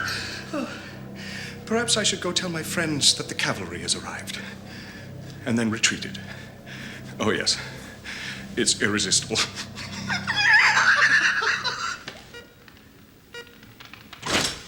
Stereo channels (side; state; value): both; identical; correlation 1.00